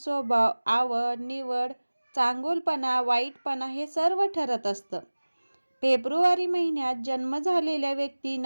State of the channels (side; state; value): both; inverted; correlation -1.00